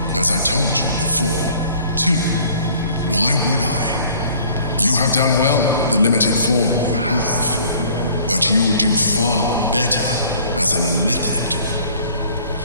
as I told you before. Two, why would I? You have done well with the limited form you have, but you would do far better as an illithid.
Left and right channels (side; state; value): both; inverted; correlation -0.54